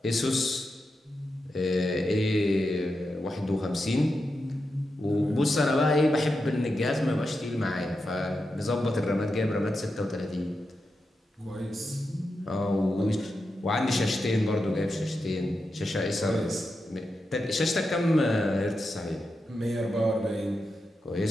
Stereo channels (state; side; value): normal; both; correlation 0.88